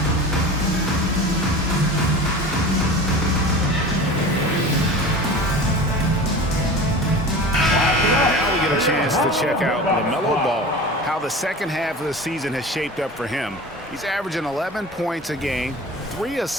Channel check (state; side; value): normal; both; correlation 0.35